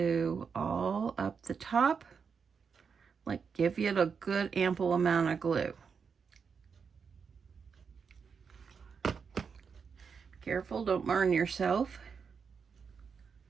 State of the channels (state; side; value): quieter; left; 6.0 dB